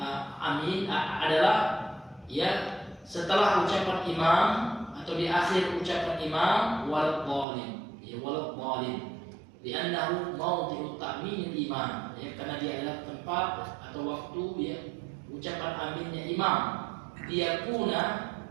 adalah ya setelah ucapan imam atau di akhir ucapan imam waladhdallin, ya waladhdallin. Li'annahu mawdhi'u ta'minil imam, ya, karena dia adalah tempat atau waktu ya ucapan aminnya imam. Liyakuna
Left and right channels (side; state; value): left; drops out; at 7.5 s